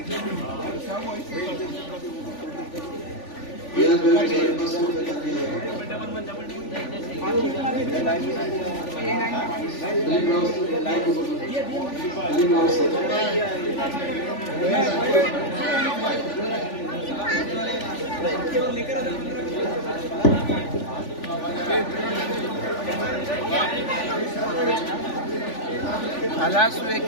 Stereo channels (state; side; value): late; right; 3.4 ms